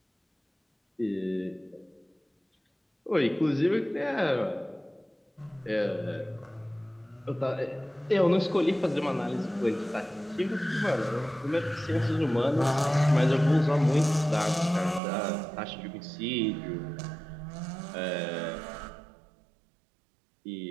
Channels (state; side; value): drops out; left; at 15.0 s